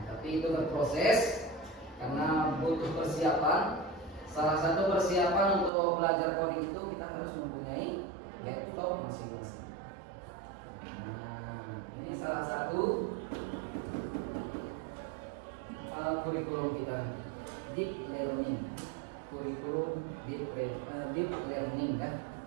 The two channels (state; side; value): drops out; left; at 5.7 s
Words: tapi itu berproses karena butuh persiapan. Salah satu persiapan untuk belajar coding itu kita harus mempunyai laptop masing-masing. Nah, ini salah satu kurikulum kita, deep learning, kurikulum deep learning kan.